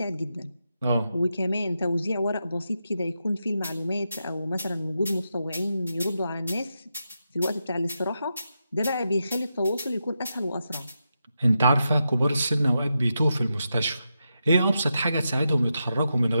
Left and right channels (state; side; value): inverted; both; correlation -0.86